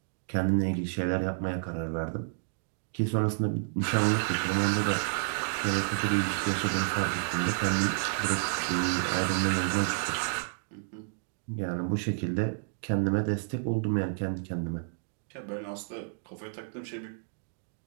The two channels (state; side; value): silent; left; digital silence